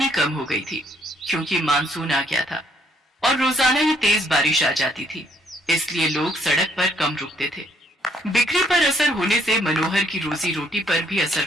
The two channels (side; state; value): both; normal; correlation 0.68